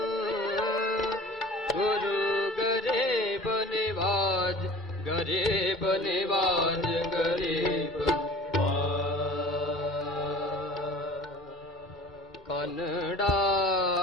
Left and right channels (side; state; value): both; normal; correlation 0.44